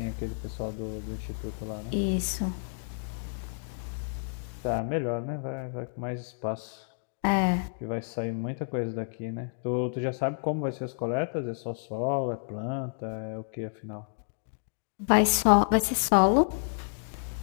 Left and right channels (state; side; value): silent; right; digital silence